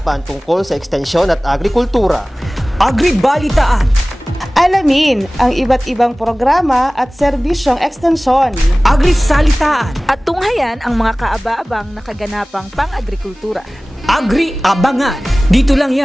tungkol sa ekstensyon at agrikultura. Agribalitaan. Alamin ang iba't ibang programa at serbisyong ekstensyon. Agrisalitaan. At tunghayan ang mga kaaba-abang na kaganapang pang-agrikultura. Agri-abangan. Dito lang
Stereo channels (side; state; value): both; normal; correlation 0.98